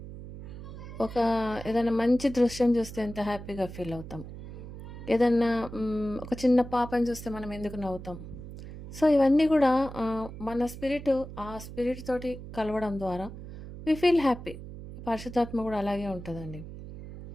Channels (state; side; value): noise; right; hum, 12 dB below the sound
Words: ఏదైనా మంచి దృశ్యం చూస్తే ఎంత హ్యాపీగా ఫీల్ అవుతాం. ఏదన్నా ఒక చిన్న పాపని చూస్తే మనం ఎందుకు నవ్వుతాం. సో ఇవన్నీ కూడా మన ఆ స్పిరిట్ తోటి కలవడం ద్వారా వి ఫీల్ హ్యాపీ. పరిశుద్ధాత్మ కూడా అలాగే ఉంటుందండి.